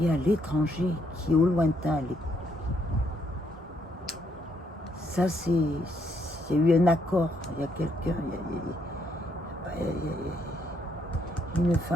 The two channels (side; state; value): both; normal; correlation 0.73